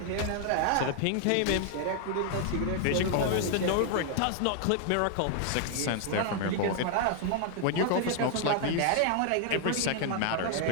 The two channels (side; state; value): both; different; correlation 0.00